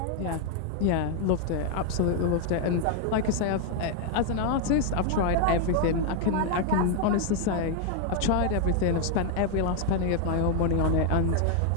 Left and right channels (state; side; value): different; both; correlation 0.00